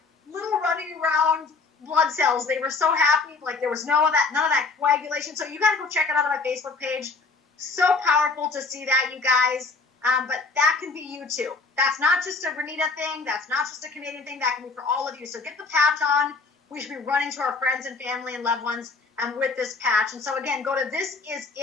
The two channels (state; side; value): quieter; right; 4.1 dB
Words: little running around blood cells. They were so happy. Like, there was none of that coagulation. So you got to go check it out on my Facebook page. So powerful to see that, you guys. But that can be you too. That's not just a Renita thing. That's not just a Canadian thing. That can be for all of you. So get the patch on. We should be running to our friends and family and loved ones with this patch. And so again, go to